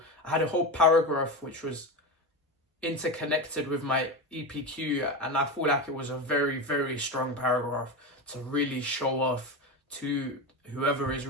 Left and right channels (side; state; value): both; normal; correlation 0.19